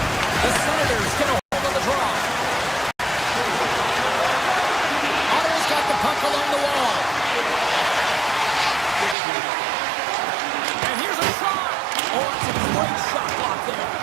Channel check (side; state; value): left; drops out; at 9.2 s